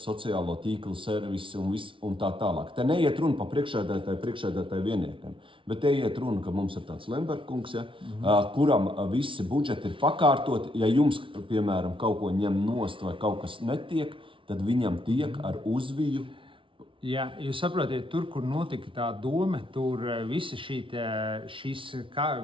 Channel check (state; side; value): late; left; 0.25 ms